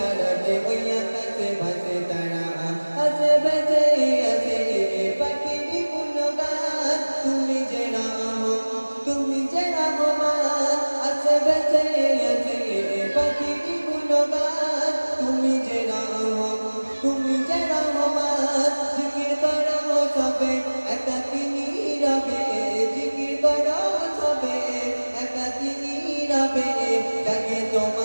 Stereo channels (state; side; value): inverted; both; correlation -1.00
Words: ওই আকাশে ভাসে তারা আছে বেঁচে আছে পাখির গুণগান তুমি যে রহমান আছে বেঁচে আছে পাখির গুণগান তুমি যে রহমান জিকির করো সবে একাকী নীরবে জিকির করো সবে একাকী নীরবে জাগে